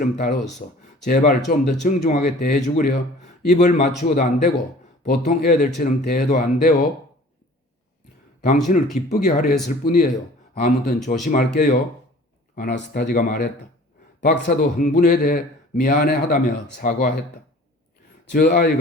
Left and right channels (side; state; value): both; normal; correlation 0.47